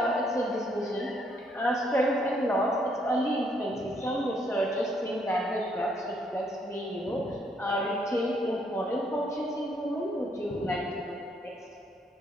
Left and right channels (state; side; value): normal; both; correlation 0.70